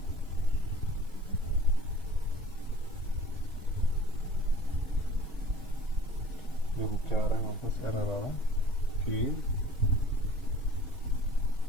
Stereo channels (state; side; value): normal; both; correlation 0.47